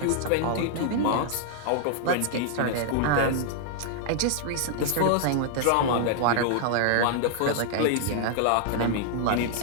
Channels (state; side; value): different; both; correlation 0.00